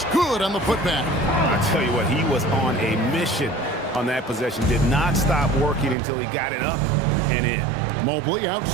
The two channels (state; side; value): drops out; left; at 6.0 s